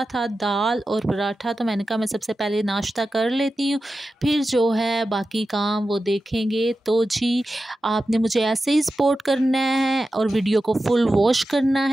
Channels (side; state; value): both; normal; correlation 0.92